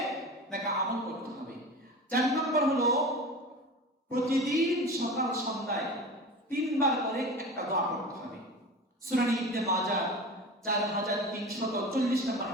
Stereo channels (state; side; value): normal; both; correlation 0.33